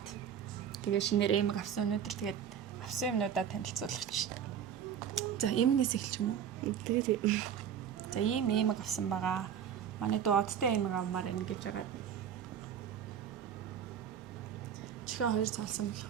тэгээ шинээр эмэг авсан өнөөдөр тэгээд авсан юмнуудаа танилцуулах чинь. За эмгнээс эхэлчих юм уу? Тэгээд за ийм эмэг авсан байгаа. Манай дүү одтой эмэг авмаар байна гэж байгаа. Чихээ хоёр цаалсан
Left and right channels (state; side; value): quieter; left; 8.6 dB